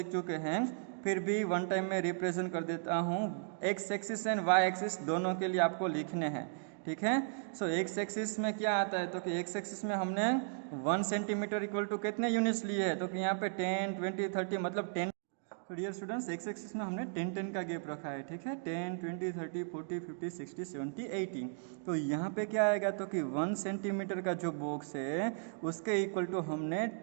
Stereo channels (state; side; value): silent; left; digital silence